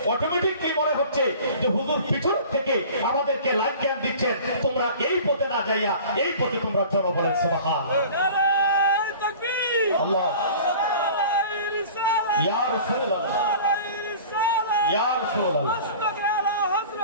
অটোমেটিকলি মনে হচ্ছে যে হুজুর পিছন থেকে আমাদেরকে লাইফ জ্ঞান দিচ্ছেন, তোমরা এই পথে না যাইয়া এই পথে তোমরা চলো। বলেন সুবহানাল্লাহ। আল্লাহ ইয়া রাসূলুল্লাহ, ইয়া রাসূলুল্লাহ,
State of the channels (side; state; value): both; inverted; correlation -0.43